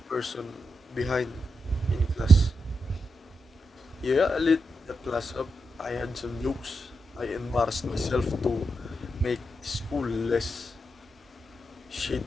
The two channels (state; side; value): normal; both; correlation 0.85